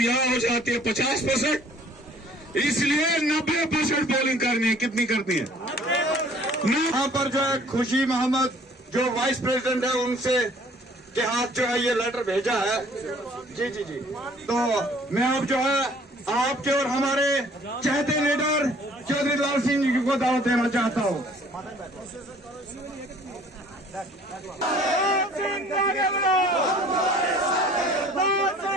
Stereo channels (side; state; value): both; normal; correlation 0.55